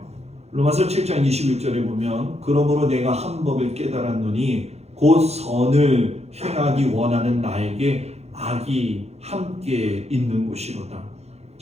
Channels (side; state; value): left; late; 0.31 ms